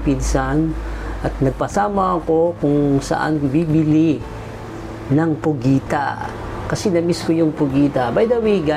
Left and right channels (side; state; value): both; identical; correlation 1.00